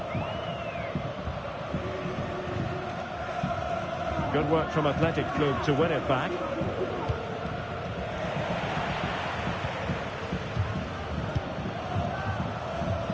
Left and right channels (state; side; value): identical; both; correlation 1.00